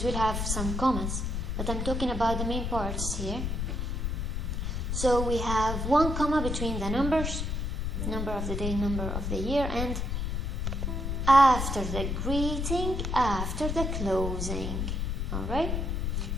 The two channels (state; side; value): noise; left; rumble, 1 dB below the sound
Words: will have some commas, but I'm talking about the main parts here. So we have 1 comma between the numbers, number of the day, number of the year, and after the greeting, after the closing. Alright?